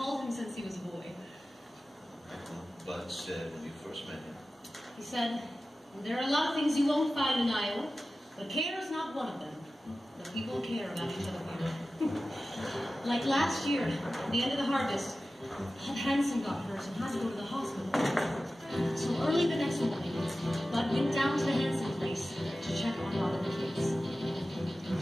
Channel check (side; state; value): both; normal; correlation 0.95